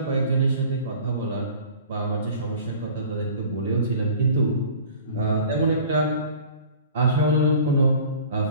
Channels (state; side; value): inverted; both; correlation -0.45